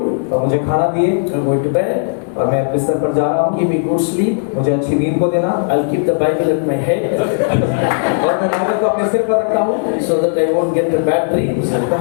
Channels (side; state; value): right; silent; digital silence